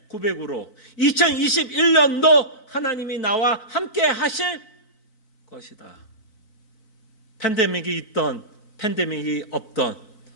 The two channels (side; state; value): right; late; 4.5 ms